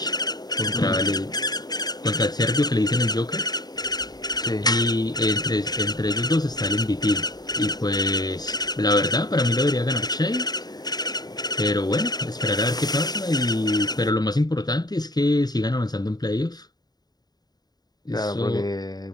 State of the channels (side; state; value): right; late; 0.19 ms